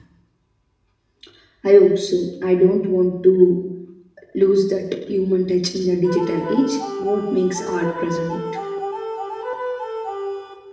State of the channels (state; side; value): identical; both; correlation 1.00